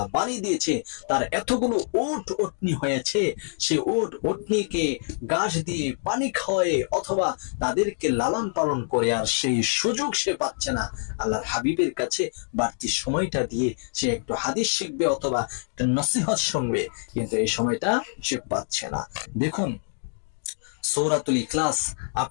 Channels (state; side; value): silent; right; digital silence